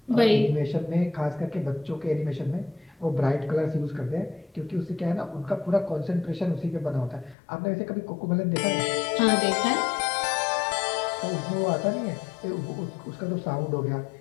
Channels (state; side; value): drops out; right; at 7.4 s